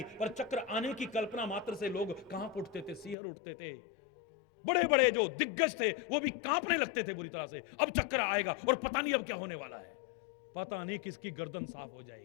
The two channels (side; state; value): right; drops out; at 3.2 s